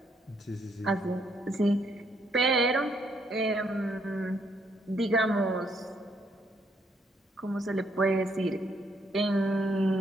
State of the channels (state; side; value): normal; both; correlation 0.72